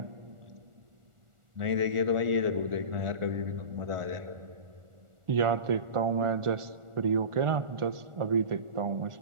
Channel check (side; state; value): left; late; 1.4 ms